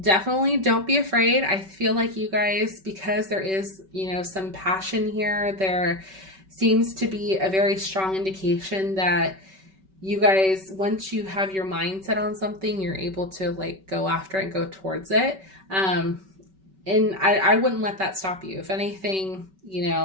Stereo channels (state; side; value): late; left; 5.2 ms